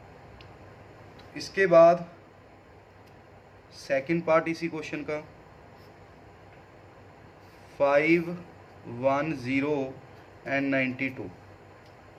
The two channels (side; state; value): both; identical; correlation 1.00